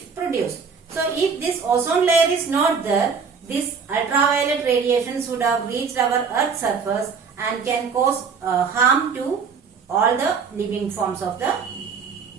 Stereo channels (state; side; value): quieter; left; 5.7 dB